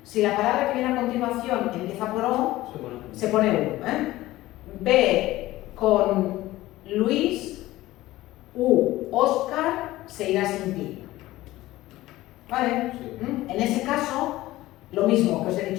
si la palabra que viene a continuación empieza por O, se pone U. Ve con Luis, Óscar, se irá sin ti. ¿Vale? Sí. En ese caso, lo mismo que os he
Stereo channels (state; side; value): quieter; right; 16.9 dB